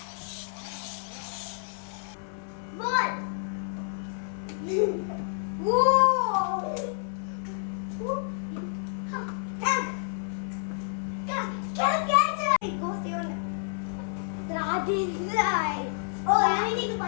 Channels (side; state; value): right; silent; 58 dB below the other